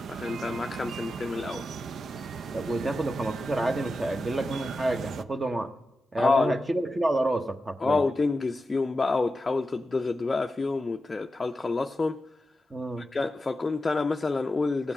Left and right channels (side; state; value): both; normal; correlation 0.91